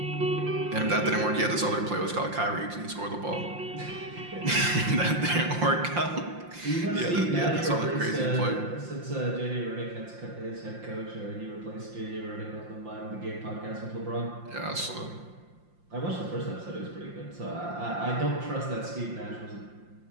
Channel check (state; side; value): late; left; 5.7 ms